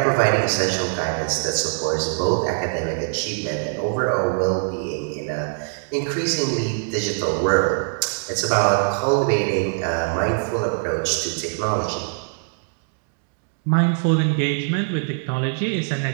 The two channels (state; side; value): silent; left; digital silence